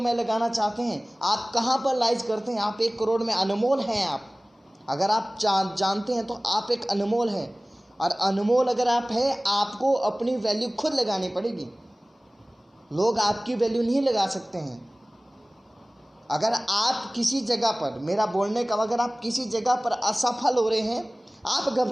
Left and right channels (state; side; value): normal; both; correlation 0.98